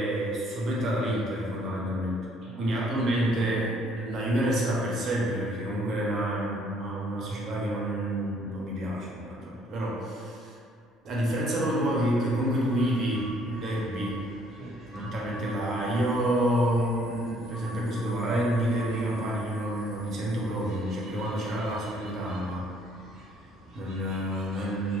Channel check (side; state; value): both; normal; correlation 0.63